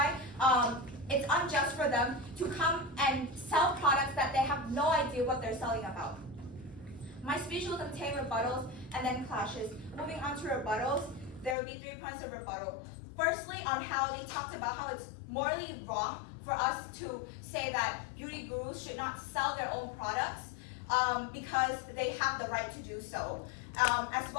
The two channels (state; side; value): drops out; right; at 11.6 s